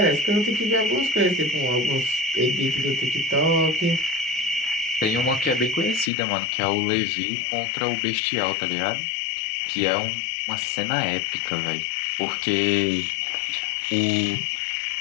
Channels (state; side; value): drops out; right; at 6.1 s